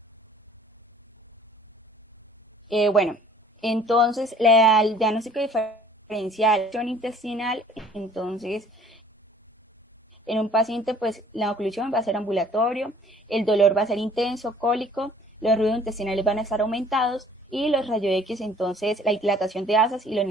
Entonces el diagnóstico diferencial intestinal, entonces en un paciente pues la oclusión va a ser ambulatorio, el dolor va a ser intenso, cólico, los ruidos intestinales van a estar aumentados y los rayos X, entonces la dilatación de asas y los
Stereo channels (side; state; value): both; normal; correlation 0.54